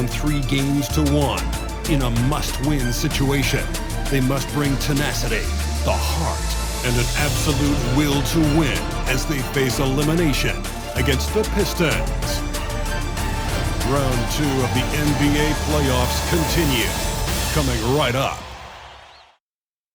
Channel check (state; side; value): identical; both; correlation 1.00